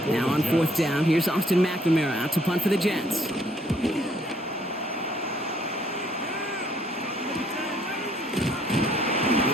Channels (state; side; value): normal; both; correlation 0.65